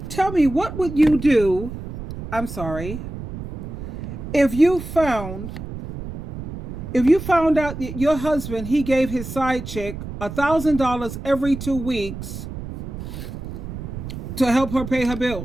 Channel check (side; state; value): right; noise; rumble, 9 dB below the sound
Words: Tell me, what would you do, if you found out that your husband, he gave his side chick $1,000 every 2 weeks to help her pay her